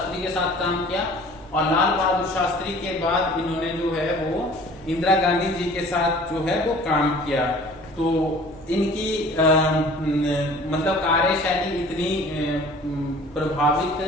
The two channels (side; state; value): left; noise; hum, 27 dB below the sound